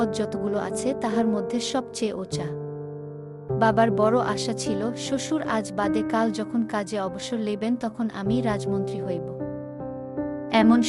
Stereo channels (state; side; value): identical; both; correlation 1.00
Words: যতগুলো আছে তাহার মধ্যে সবচেয়ে ওচা। বাবার বড় আশা ছিল, শ্বশুর আজ বাদে কাল যখন কাজে অবসর লইবেন তখন আমি রাজমন্ত্রী হইব। এমন